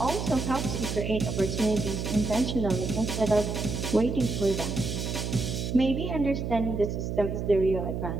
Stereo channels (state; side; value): noise; right; hum, 3 dB below the sound